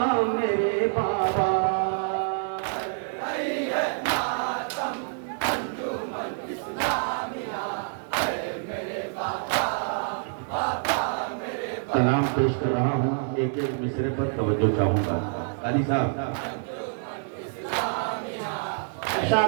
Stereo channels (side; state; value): left; silent; digital silence